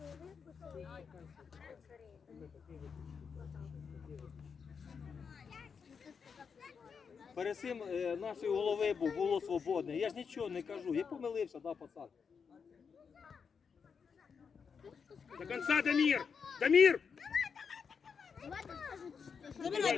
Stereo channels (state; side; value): quieter; right; 6.1 dB